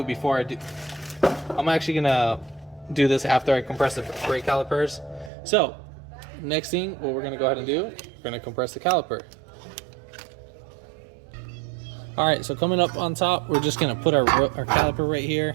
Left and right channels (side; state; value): left; drops out; at 5.3 s